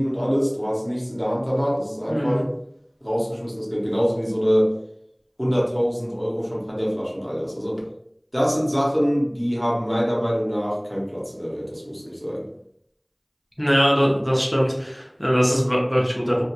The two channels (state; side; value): identical; both; correlation 1.00